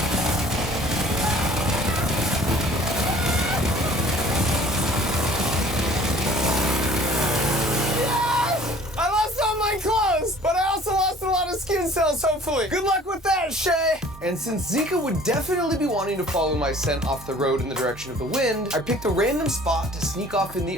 But I also lost a lot of skin cells, hopefully. Good luck with that, Shay. And since Zinka would definitely be wanting to follow my scent off the road in the direction of the wind, I picked a random spot to sneak off in the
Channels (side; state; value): both; normal; correlation 0.51